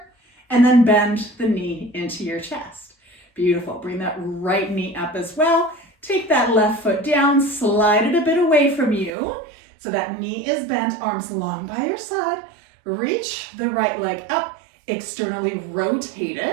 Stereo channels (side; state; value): left; drops out; at 9.1 s